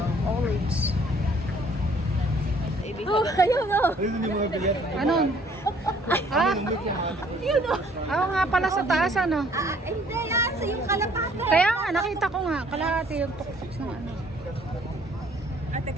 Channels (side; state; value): both; normal; correlation 0.59